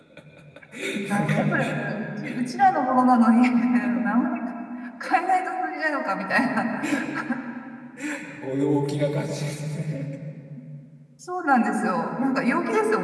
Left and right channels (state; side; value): identical; both; correlation 1.00